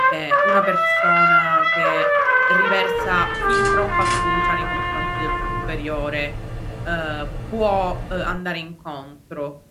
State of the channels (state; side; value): identical; both; correlation 1.00